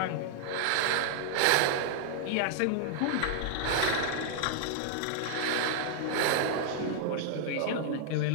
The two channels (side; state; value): both; different; correlation -0.01